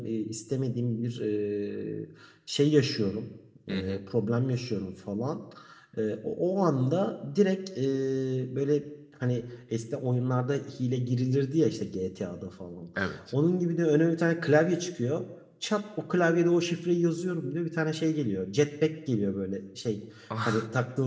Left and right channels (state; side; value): identical; both; correlation 1.00